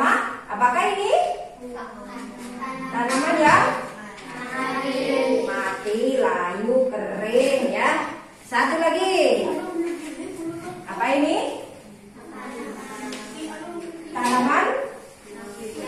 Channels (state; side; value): identical; both; correlation 1.00